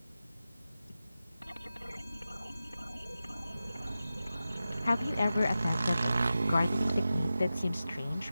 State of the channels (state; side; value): inverted; both; correlation -0.94